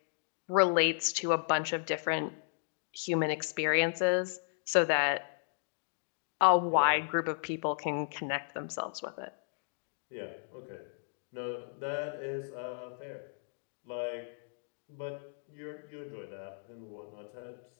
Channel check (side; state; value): right; silent; digital silence